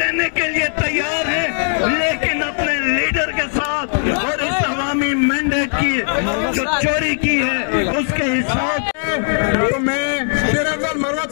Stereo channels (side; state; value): right; silent; digital silence